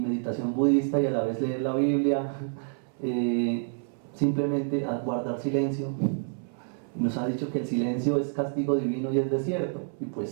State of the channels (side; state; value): left; silent; 59 dB below the other